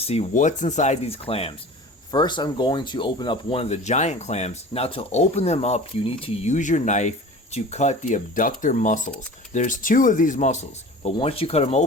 what's inside these clams. First, I'm going to open up one of the giant clams. Now to open them up, you need to use your knife to cut the abductor muscles. There's 2 of these muscles, but once you cut them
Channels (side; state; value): both; normal; correlation 0.40